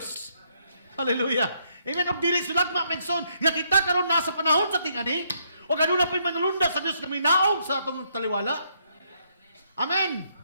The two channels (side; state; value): both; inverted; correlation -0.72